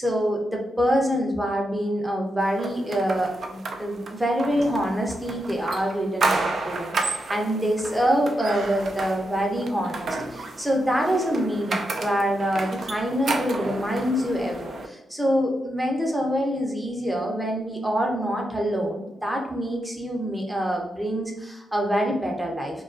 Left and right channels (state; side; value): normal; both; correlation 0.85